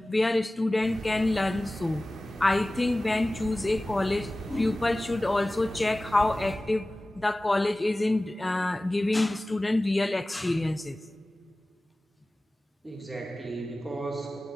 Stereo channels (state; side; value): normal; both; correlation 0.97